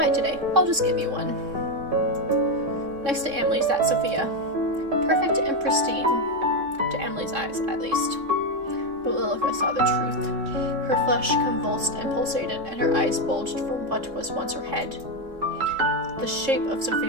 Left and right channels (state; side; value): late; left; 3.6 ms